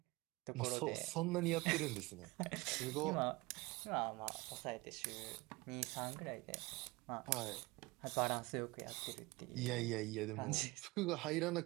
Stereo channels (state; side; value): quieter; left; 23.1 dB